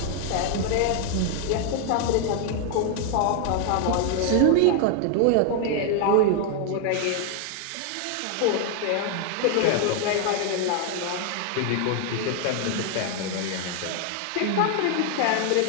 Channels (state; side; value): different; both; correlation 0.00